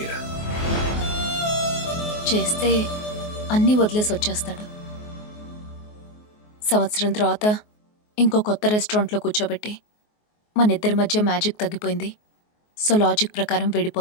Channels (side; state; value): right; late; 24 ms